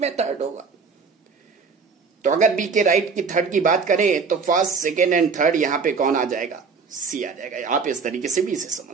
में थर्ड होगा। तो अगर बी के राइट की थर्ड की बात करें तो फर्स्ट सेकेंड एंड थर्ड यहां पे कौन आ जाएगा, सी आ जाएगा। आप इस तरीके से भी इसे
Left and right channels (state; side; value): quieter; left; 5.1 dB